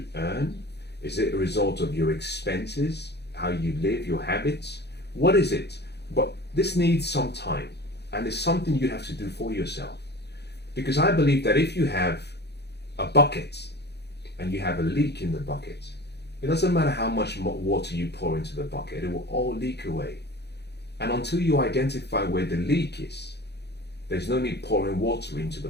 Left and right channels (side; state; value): right; late; 0.48 ms